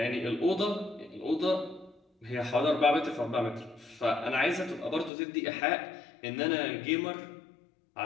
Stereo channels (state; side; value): drops out; right; at 5.1 s